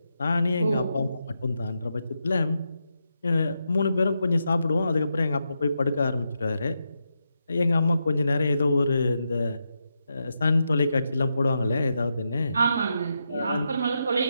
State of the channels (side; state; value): both; inverted; correlation -0.85